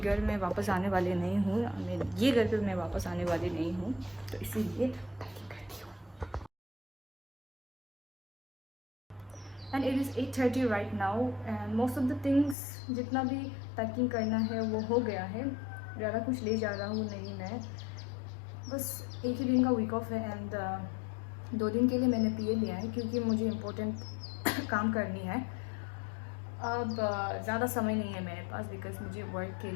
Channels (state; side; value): drops out; right; at 12.6 s